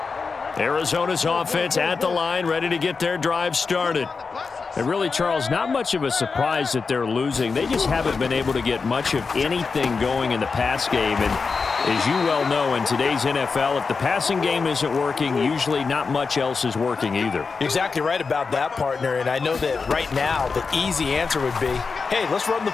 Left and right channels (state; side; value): quieter; right; 4.8 dB